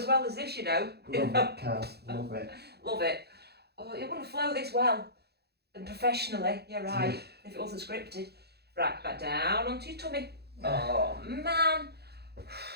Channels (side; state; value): left; late; 0.47 ms